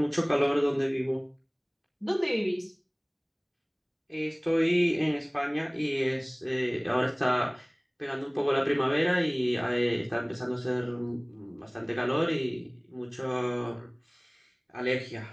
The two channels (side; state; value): both; identical; correlation 1.00